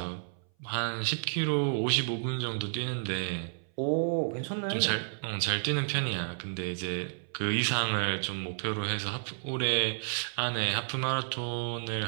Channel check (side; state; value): left; silent; 57 dB below the other